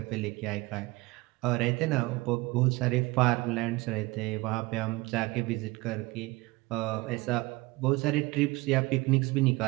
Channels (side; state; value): left; quieter; 22.2 dB